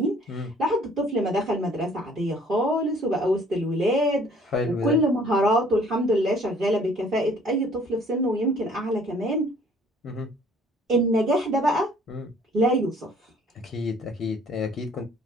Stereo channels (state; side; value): normal; both; correlation 0.57